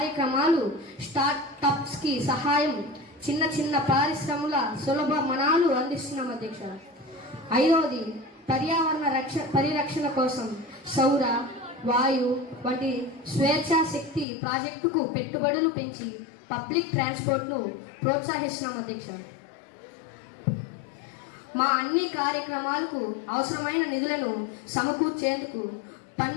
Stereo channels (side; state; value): right; drops out; at 14.2 s